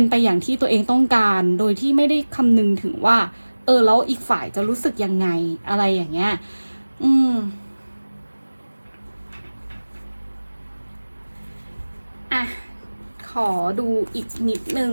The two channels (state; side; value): inverted; both; correlation -1.00